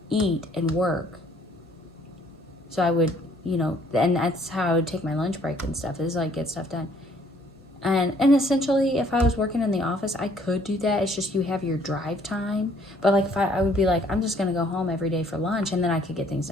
eat and work. So I would, you know, and that's how I would take my lunch break and stuff, is like get stuff done. And essentially, if I was working in the office, I could do that. It's just you have your drive time. But like if I would be like, I'm just gonna go home every day for lunch, and then I could get things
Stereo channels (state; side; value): normal; both; correlation 0.62